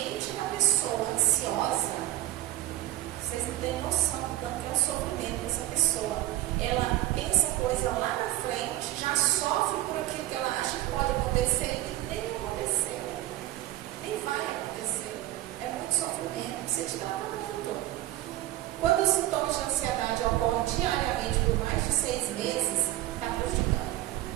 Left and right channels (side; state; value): left; quieter; 15.1 dB